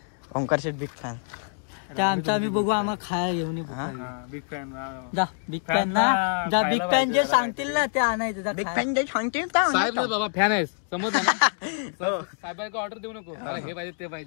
ओंकार शेठ बिग फॅन. आमचा आम्ही बघू आम्हाला खायला घेऊन बिग फॅन जा. बिग फॅन ना जा. बिग फॅन जे सांगतील ना ते आणायचं. बिग फॅन जे सांगतील साहेब ना बाबा फॅन आहेस समज ना. साहेबांना ऑर्डर देऊ नको मला हे पाहिजे ते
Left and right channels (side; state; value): right; silent; 61 dB below the other